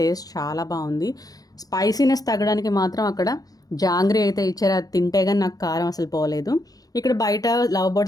చాలా బాగుంది. స్పైసీనెస్ తగ్గడానికి మాత్రం అక్కడ జాంగ్రీ అయితే ఇచ్చారు. అది తింటే కానీ నాకు కారం అసలు పోలేదు. ఇక్కడ బయట లవ్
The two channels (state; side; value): late; right; 0.18 ms